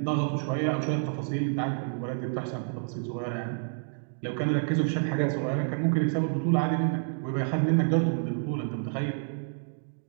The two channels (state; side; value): silent; left; 57 dB below the other